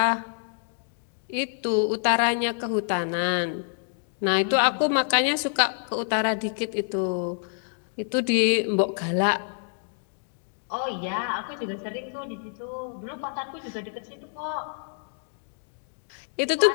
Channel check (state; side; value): silent; right; 60 dB below the other